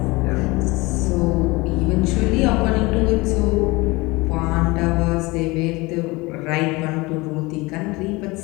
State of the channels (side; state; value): right; quieter; 23.4 dB